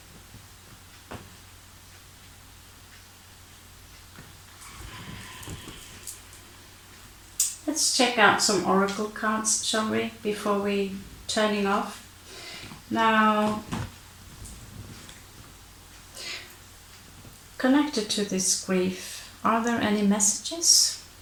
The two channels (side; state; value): both; identical; correlation 1.00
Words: Let's check out some oracle cards, shall we, before we turning off. Now, connected to this grief, are there any messages?